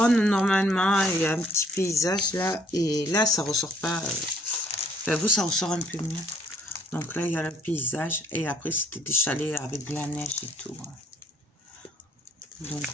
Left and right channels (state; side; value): normal; both; correlation 0.62